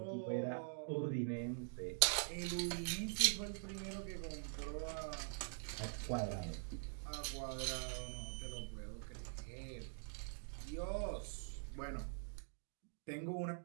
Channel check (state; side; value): silent; left; digital silence